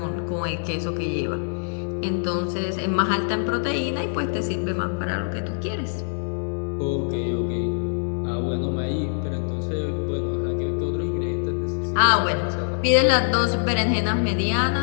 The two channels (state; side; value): silent; right; digital silence